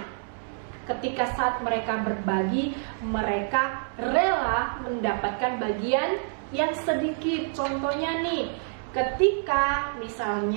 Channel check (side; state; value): left; silent; 60 dB below the other